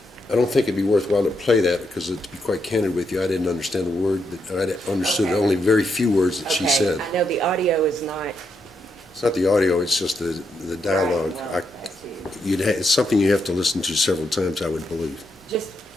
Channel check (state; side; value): normal; both; correlation 0.81